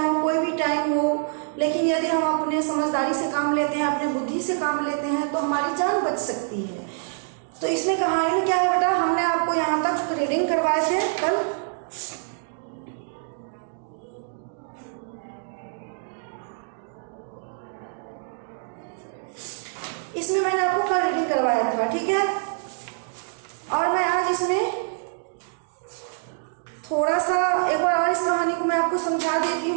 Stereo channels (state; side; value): silent; left; digital silence